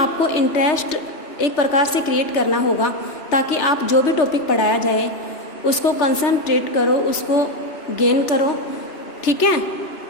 इंटरेस्ट एक प्रकार से क्रिएट करना होगा ताकि आप जो भी टॉपिक पढ़ाया जाए उसको कंसंट्रेट करो, उसको गेन करो, ठीक है।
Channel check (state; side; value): late; right; 3.3 ms